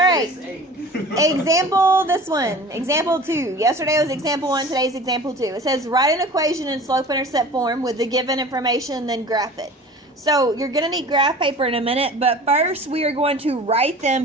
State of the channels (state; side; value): normal; both; correlation 0.41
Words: 6'8". Example, this one. Example 2. Yesterday was example 1, today's example 2. It says write an equation in slope-intercept form with the given information, then graph it. So you're going to need graph paper in a minute, but first we are going to write